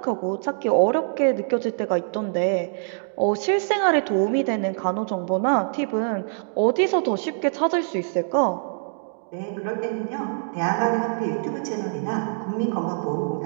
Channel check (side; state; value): left; silent; digital silence